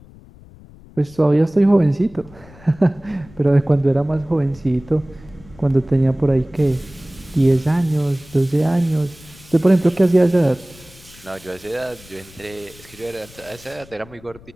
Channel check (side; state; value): left; noise; rumble, 23 dB below the sound